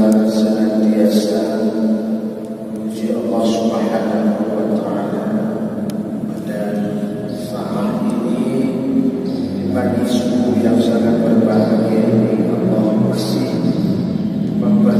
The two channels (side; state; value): both; identical; correlation 1.00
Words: senantiasa memuji Allah Subhanahu wa Ta'ala. Dan saat ini di pagi subuh yang sangat berbahagia ini, Allah masih